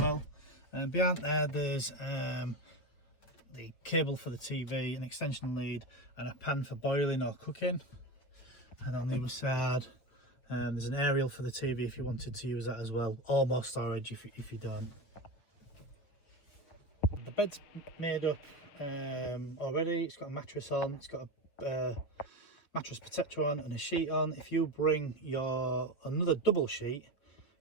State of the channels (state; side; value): late; right; 6.8 ms